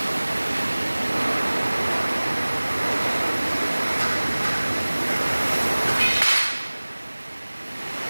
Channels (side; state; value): both; inverted; correlation -1.00